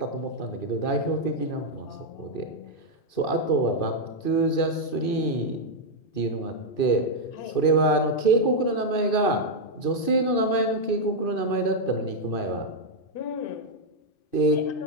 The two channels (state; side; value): late; right; 2.6 ms